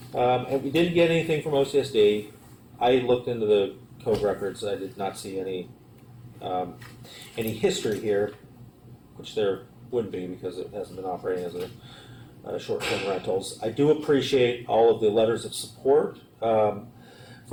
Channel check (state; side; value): identical; both; correlation 1.00